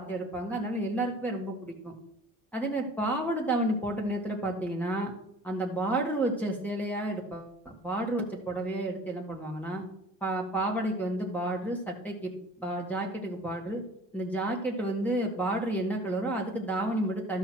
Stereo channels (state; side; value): normal; both; correlation 0.47